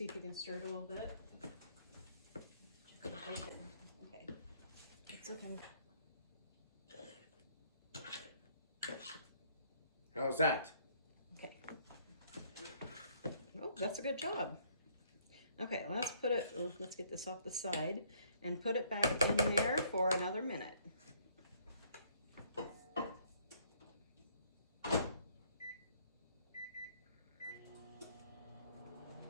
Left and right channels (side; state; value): both; inverted; correlation -0.63